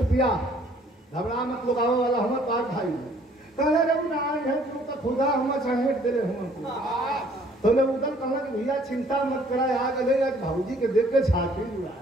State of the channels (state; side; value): normal; both; correlation 0.59